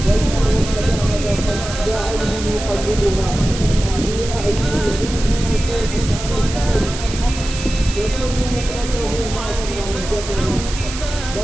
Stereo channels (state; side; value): noise; right; hiss, 9 dB below the sound